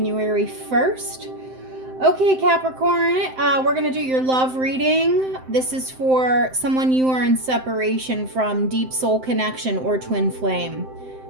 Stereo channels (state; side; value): late; left; 7.7 ms